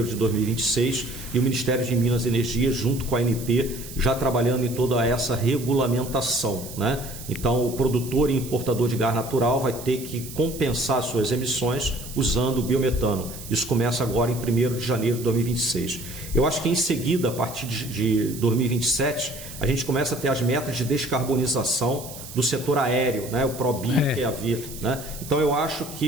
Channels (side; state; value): right; noise; hiss, 13 dB below the sound